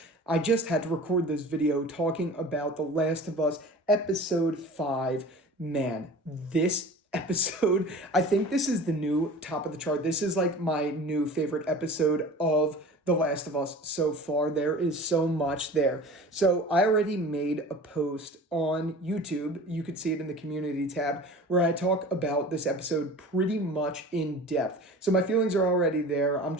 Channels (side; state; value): both; normal; correlation 0.40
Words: I just had to record this video talking about The Last of Us episode 5. Man, this episode, I think this is the new top of the chart. This is like my new favorite episode of The Last of Us so far. There is so much there. So I already made a post on YouTube. You could see it in the community tab where I talk about this episode pretty much in depth. So my feelings are already there. I'm